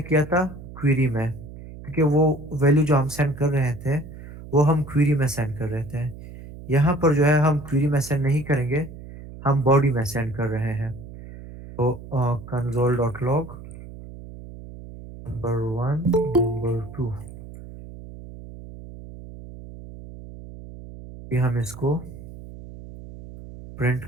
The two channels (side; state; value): right; noise; hum, 15 dB below the sound